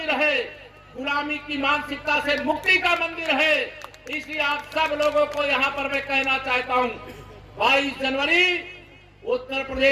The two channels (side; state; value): both; identical; correlation 1.00